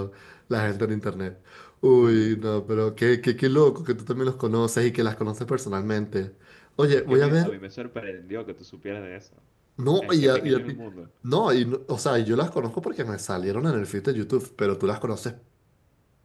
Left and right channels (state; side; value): identical; both; correlation 1.00